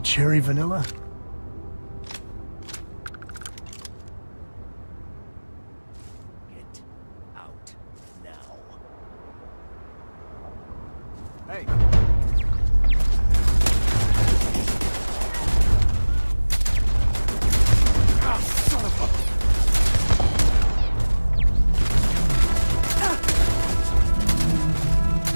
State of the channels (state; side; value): inverted; both; correlation -1.00